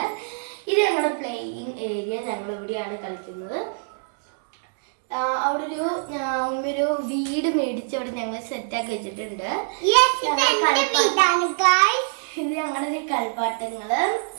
ഇത് ഞങ്ങളുടെ പ്ലേയിങ് ഏരിയ. ഞങ്ങൾ ഇവിടെയാണ് കളിക്കുന്നത്. അവിടെ ഒരു വീട് മേടിച്ചവിടെ ഞങ്ങൾ സെറ്റാക്കി വെച്ചിട്ടുണ്ട്. ഇത് ഞങ്ങളുടെ കളിപ്പാട്ടങ്ങള്.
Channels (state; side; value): silent; left; digital silence